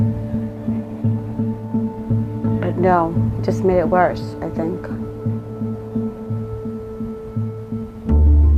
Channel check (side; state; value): both; identical; correlation 1.00